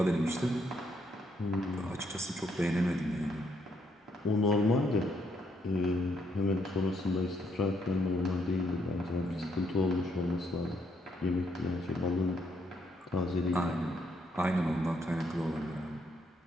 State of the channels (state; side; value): normal; both; correlation 0.73